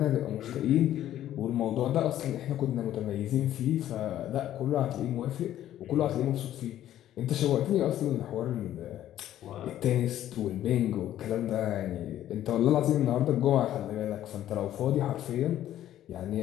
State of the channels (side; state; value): right; quieter; 12.3 dB